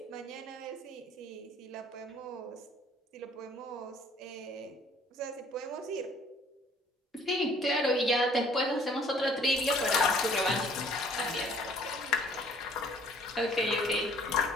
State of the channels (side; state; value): both; normal; correlation 0.57